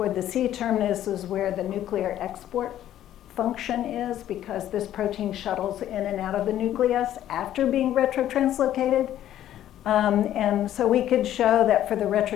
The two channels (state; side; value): quieter; right; 12.0 dB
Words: the C-terminus is where the nuclear export function is, because this protein shuttles in and out of the nucleus after being retrotranslocated. And so we could show that for the